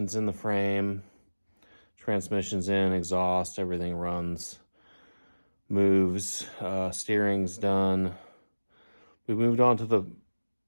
in the frame, transmission's in, exhaust, everything runs, moves, steering's done. We moved on to the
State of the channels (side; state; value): both; inverted; correlation -1.00